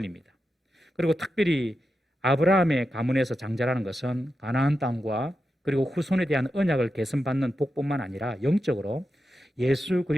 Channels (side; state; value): both; normal; correlation 0.89